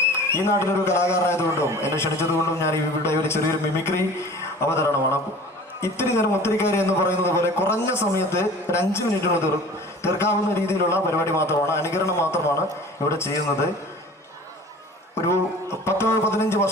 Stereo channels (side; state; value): both; normal; correlation 0.43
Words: ഈ നാട്ടിലൊരു കലാകാരനായതുകൊണ്ടും എന്നെ ക്ഷണിച്ചതുകൊണ്ടും ഞാൻ ഇവിടെ ഒരു ചെറിയൊരു മിമിക്രി അവതരണമാണ്. ഇത്തിരി നേരം ഒത്തിരിക്കാരി എന്ന് പറയുന്നത് പോലെ കുറഞ്ഞ സമയത്ത് ഒരു 5 മിനിറ്റിന് തീർക്കാവുന്ന രീതിയിലുള്ള പരിപാടി മാത്രമാണ്, അനുകരണം മാത്രമാണ് ഇവിടെ ചെയ്യുന്നത്. ഒരു 10-15